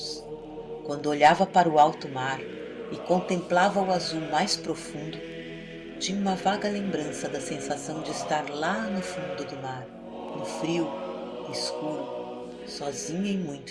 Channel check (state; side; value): identical; both; correlation 1.00